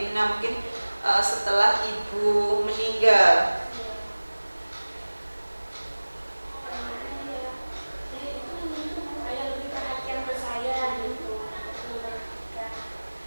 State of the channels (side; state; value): both; inverted; correlation -1.00